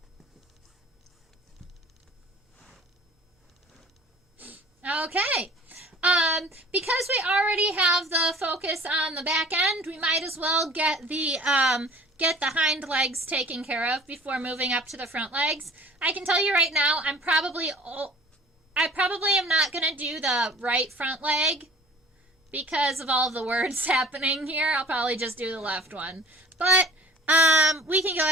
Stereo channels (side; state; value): both; normal; correlation 0.47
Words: Okay. Because we already have the focus on the back end, we might as well get the hind legs taken care of before moving up to the front legs. I can tell you right now, I probably am not going to do the right front leg because of all of the words happening here. I'll probably just do the left one. But we can go